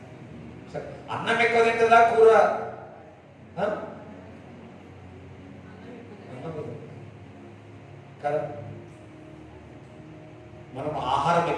అన్నం ఎక్కువ తింటారా, కూర? కదా, మనం ఆహారం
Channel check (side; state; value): both; identical; correlation 1.00